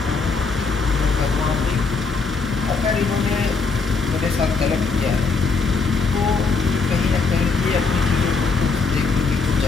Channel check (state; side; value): quieter; right; 4.5 dB